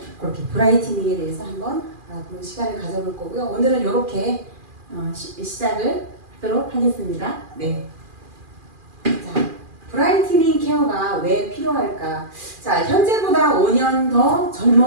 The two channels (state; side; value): late; left; 2.4 ms